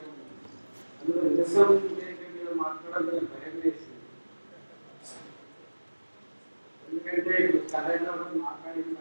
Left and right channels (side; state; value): both; inverted; correlation -1.00